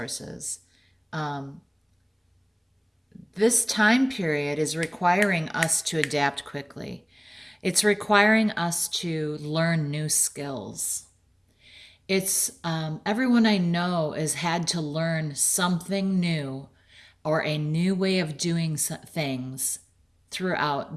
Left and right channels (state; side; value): identical; both; correlation 1.00